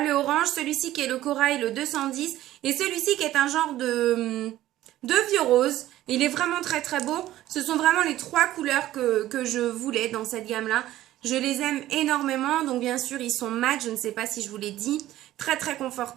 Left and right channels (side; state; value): left; quieter; 14.4 dB